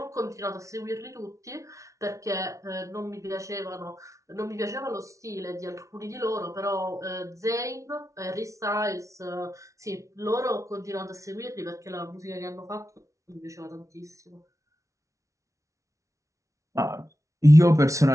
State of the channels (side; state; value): left; late; 0.15 ms